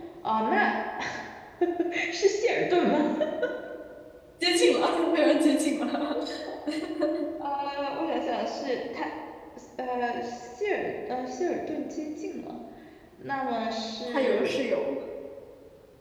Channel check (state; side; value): identical; both; correlation 1.00